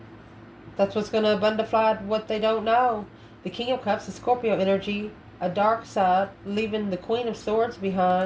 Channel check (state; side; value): identical; both; correlation 1.00